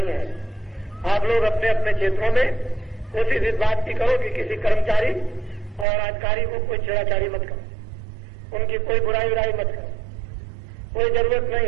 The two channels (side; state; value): left; drops out; at 5.9 s